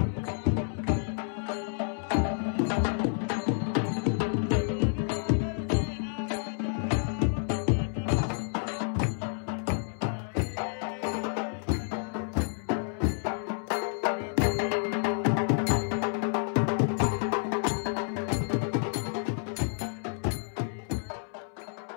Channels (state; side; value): silent; right; 58 dB below the other